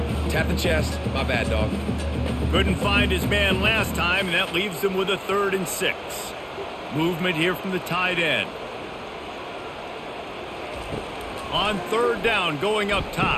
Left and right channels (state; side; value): identical; both; correlation 1.00